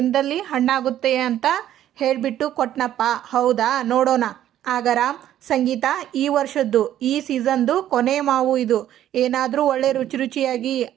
ಹಣ್ಣಾಗುತ್ತೆ ಅಂತ ಹೇಳಿಬಿಟ್ಟು ಕೊಟ್ನಪ್ಪ. ಹೌದಾ, ನೋಡೋಣ. ಆಗ ರಾಮ್, ಸಂಗೀತ, ಈ ವರ್ಷದ್ದು ಈ ಸೀಸನ್ದು ಕೊನೆ ಮಾವು ಇದು, ಏನಾದರೂ ಒಳ್ಳೆ ರುಚಿ ರುಚಿಯಾಗಿ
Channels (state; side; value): quieter; left; 11.9 dB